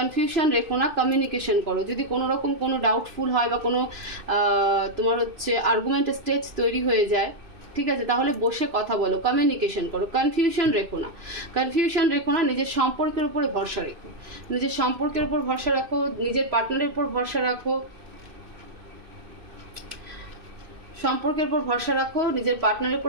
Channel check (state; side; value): late; left; 2.6 ms